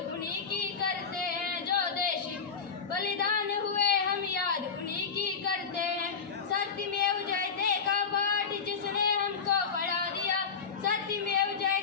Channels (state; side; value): quieter; right; 5.8 dB